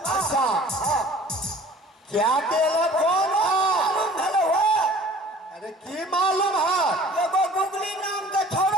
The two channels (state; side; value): normal; both; correlation 0.48